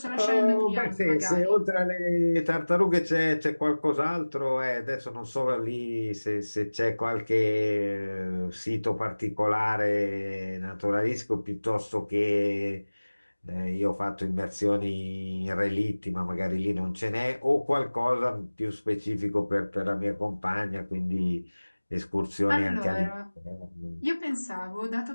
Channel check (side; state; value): both; inverted; correlation -1.00